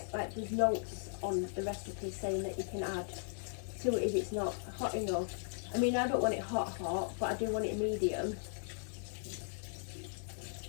notes on the recipe saying that you can add to it if it's not hot enough. I mean, I don't want it hot, but I do want it medium.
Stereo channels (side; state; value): right; silent; 53 dB below the other